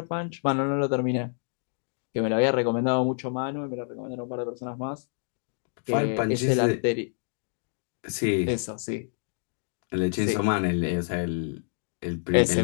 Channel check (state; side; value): silent; right; 57 dB below the other